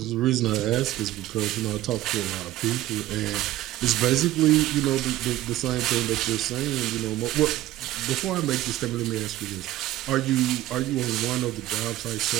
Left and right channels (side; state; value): left; quieter; 15.0 dB